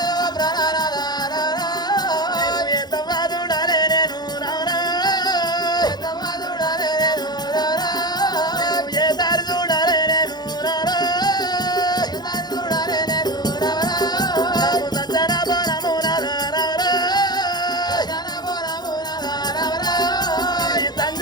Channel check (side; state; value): right; late; 0.20 ms